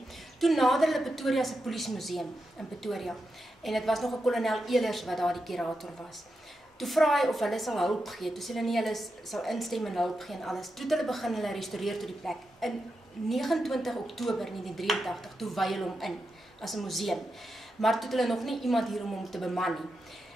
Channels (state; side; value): normal; both; correlation 0.87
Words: Toe nader hulle Pretoria se polisiemuseum in Pretoria, en dit was nog 'n kolonel Elers wat daar die kurator was. Toe vra hy of hulle sal hulp gee. Toe sê hulle nee, hulle sal instem en hulp gee en alles. Toe hulle begin hulle restaureer tot die plek. In 29 Oktober 1983 toe wy hulle hom in as 'n museum. Maar toe het hulle nog nie iemand hier om hom te beman nie.